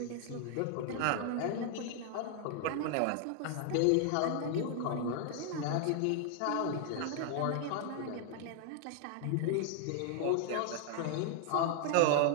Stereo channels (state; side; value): different; both; correlation 0.00